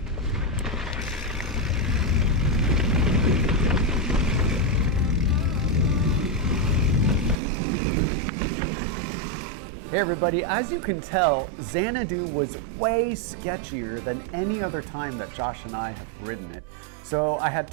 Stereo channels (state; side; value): drops out; left; at 7.4 s